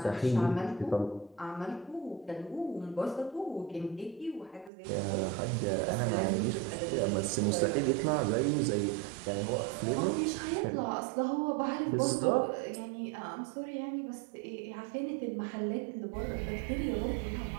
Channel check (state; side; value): drops out; left; at 4.7 s